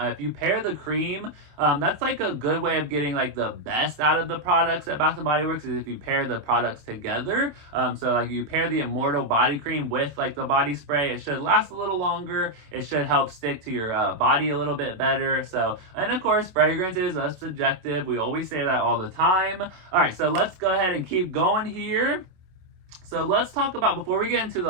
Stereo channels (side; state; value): left; late; 27 ms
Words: you pair the cream, that's like a good way of getting like the best out of the products at Bath & Body Works, is if you pair the products together. So like you pair the Immortal body cream with like the body spray, it should last a little longer. It should help stick to your body a little bit better. So, and of course, fragrance is subjective. We always say that all the time. All right, so let's go ahead and keep going here. So let's talk about, before we get into